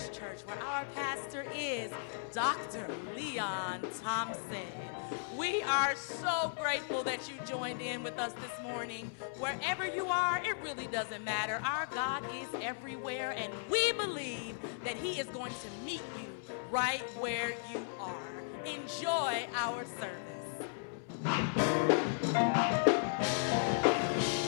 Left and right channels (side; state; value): right; silent; 54 dB below the other